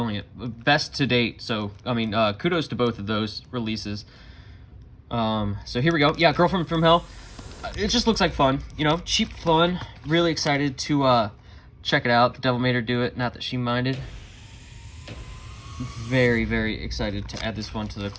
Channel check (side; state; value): both; identical; correlation 1.00